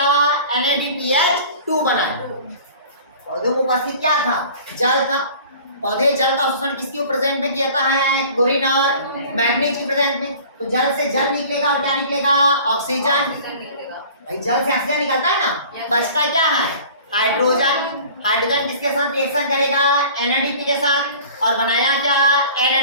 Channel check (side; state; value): both; inverted; correlation -0.45